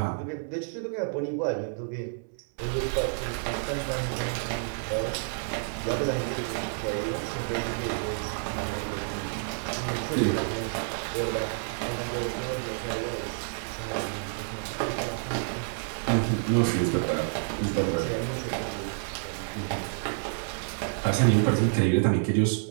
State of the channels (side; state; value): left; silent; digital silence